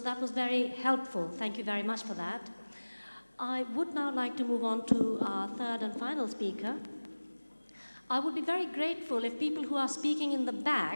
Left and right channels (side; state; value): both; inverted; correlation -1.00